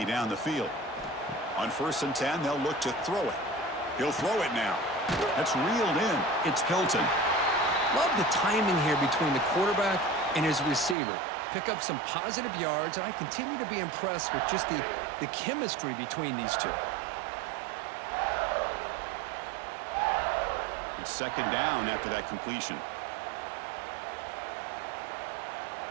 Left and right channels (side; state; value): left; drops out; at 11.0 s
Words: down the field. On 1st and 10, they'll look to throw it. He'll throw it now. That's reeled in. It's Hilton. Love the timing here between the quarterback and his receiver. Pick up some positive yards, and I continue to be impressed with just the chemistry between these two. It's second down after that completion.